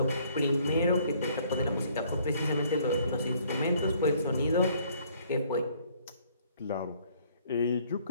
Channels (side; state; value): both; inverted; correlation -0.62